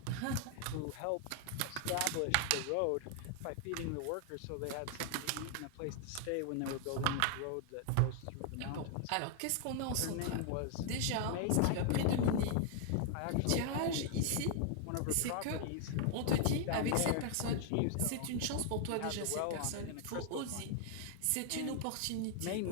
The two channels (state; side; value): different; both; correlation 0.00